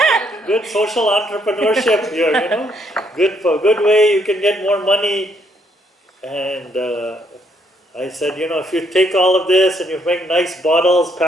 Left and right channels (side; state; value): both; normal; correlation 0.71